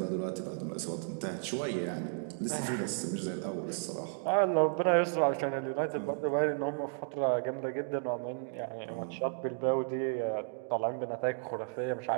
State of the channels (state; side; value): silent; left; digital silence